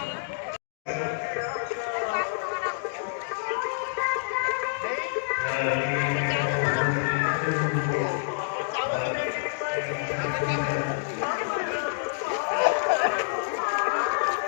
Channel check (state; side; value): silent; right; digital silence